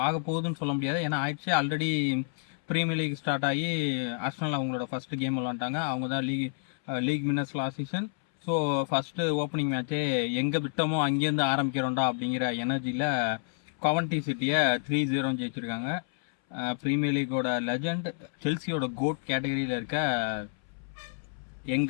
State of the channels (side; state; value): right; silent; 58 dB below the other